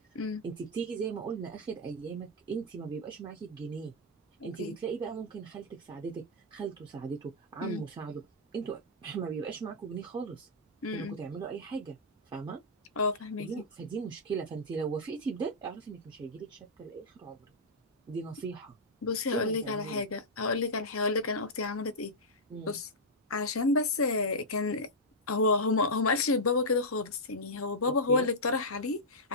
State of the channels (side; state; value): both; normal; correlation -0.09